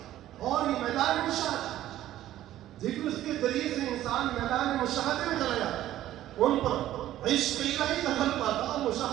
اور یہ میدان مشاہدہ، ذکر کے ذریعے سے انسان میدان مشاہدے میں چلا جاتا ہے، ان پر عشق الہی دخل پاتا،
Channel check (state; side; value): quieter; left; 13.4 dB